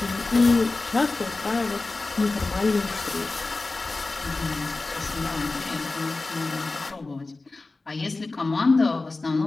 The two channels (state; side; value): quieter; right; 3.4 dB